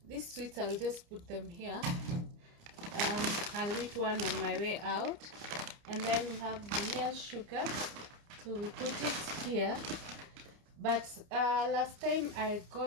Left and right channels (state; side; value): late; left; 29 ms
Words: These sweets, I'll just put them here. I'll eat one on my way out. And then we have vanilla sugar, so we put it here. But last time I